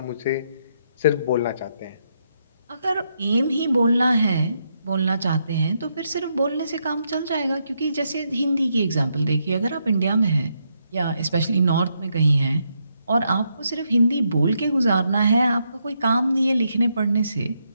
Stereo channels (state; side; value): inverted; both; correlation -0.79